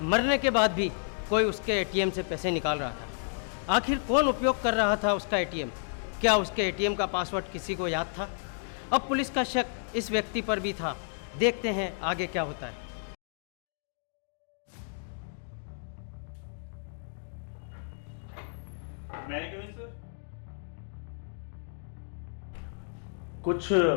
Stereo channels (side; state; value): right; silent; digital silence